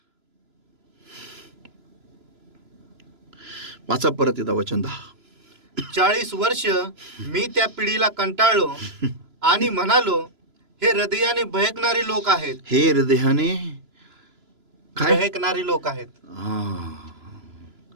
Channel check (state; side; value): late; left; 3.0 ms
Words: वाचा परत येता वचन 10. 40 वर्ष मी त्या पिढीला कंटाळलो आणि म्हणालो, हे हृदयाने भयकणारी लोक आहेत. हे हृदयाने काय भयकणारी लोक आहेत.